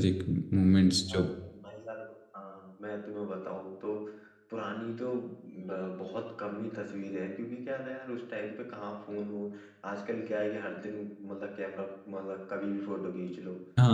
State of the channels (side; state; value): both; identical; correlation 1.00